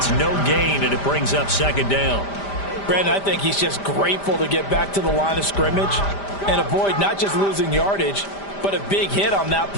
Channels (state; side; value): late; right; 5.0 ms